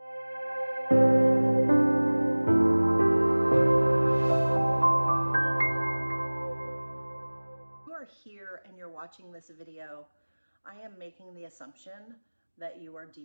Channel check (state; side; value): inverted; both; correlation -1.00